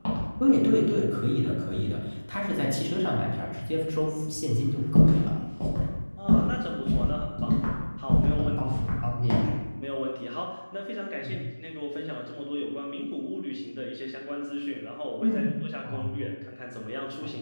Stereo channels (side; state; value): both; inverted; correlation -1.00